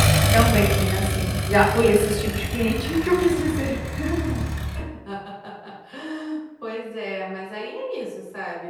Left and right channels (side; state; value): both; identical; correlation 1.00